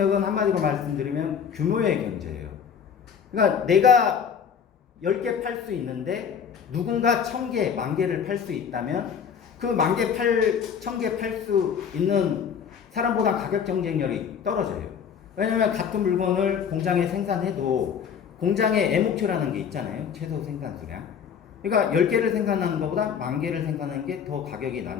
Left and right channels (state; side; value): quieter; right; 7.3 dB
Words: 한마디로 말씀드리면 규모의 경제예요. 그러니까 내가 10개 팔 수 있는데 누군가 1000개, 10,000개를 팔 수 있다면 그 10,000개, 1000개 팔 수 있는 사람보다 가격 경쟁력이 떨어져요. 왜냐면 같은 물건을 공장에 생산해도 공장의 애목표라는 게 있잖아요. 최소 생산 수량. 그러니까 10개를 생산하는 것보다 10,000개를 생산하는 게 더 가격이